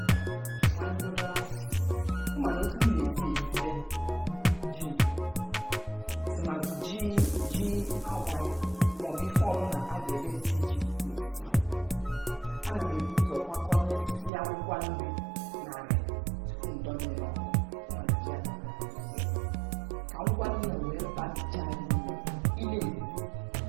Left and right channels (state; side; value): drops out; left; at 14.3 s